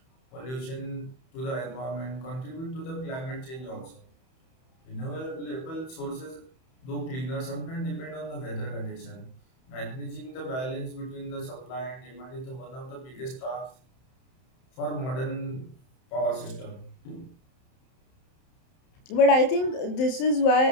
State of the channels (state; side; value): late; right; 31 ms